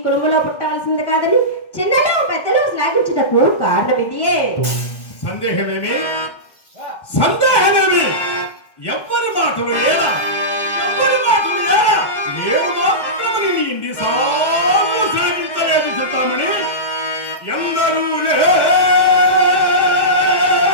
కుటుంబంలో పుట్టాల్సింది కాదని చిన్నలు పెద్దలు శ్లాఘించుటకు కారణం ఇదియే. సందేహమేమి ఎవ్వరి మాటలు ఏడా నేను మాత్రం నేను ఇన్నిసార్లు శ్లాఘించలేదు చింతామణి. ఎందరూ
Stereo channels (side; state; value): right; late; 1.6 ms